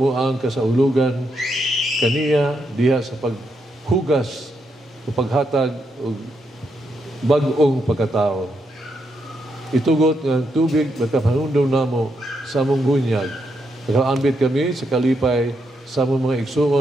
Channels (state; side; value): normal; both; correlation 0.80